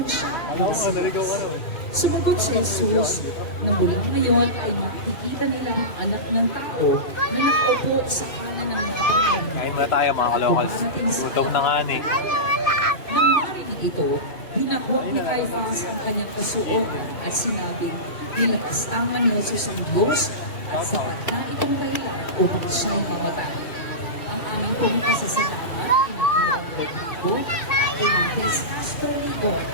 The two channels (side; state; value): right; late; 2.6 ms